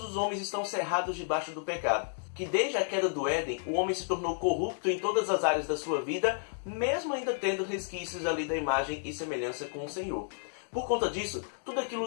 os homens estão cerrados debaixo do pecado. Que desde a queda do Éden, o homem se tornou corrupto em todas as áreas da sua vida, mesmo ainda tendo resquícios ali da imagem e semelhança com o Senhor. Por conta disso, tudo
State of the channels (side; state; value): right; silent; digital silence